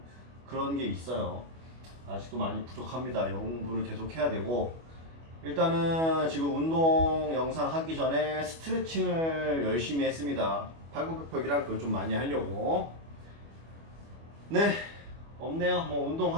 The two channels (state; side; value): late; left; 25 ms